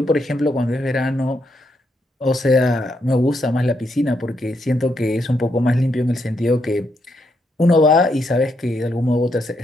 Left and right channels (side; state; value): both; normal; correlation 0.78